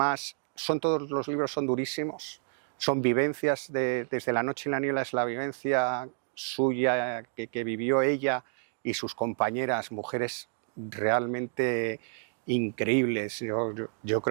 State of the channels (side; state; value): left; silent; digital silence